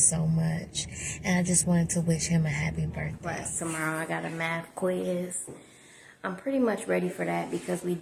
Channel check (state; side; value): identical; both; correlation 1.00